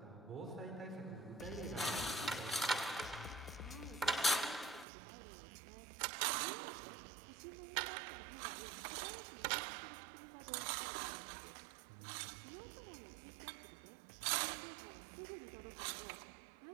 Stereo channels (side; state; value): left; drops out; at 4.9 s